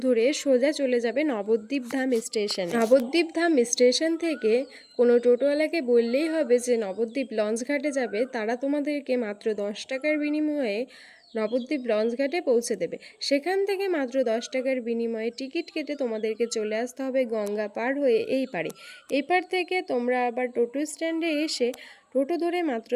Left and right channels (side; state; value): both; identical; correlation 1.00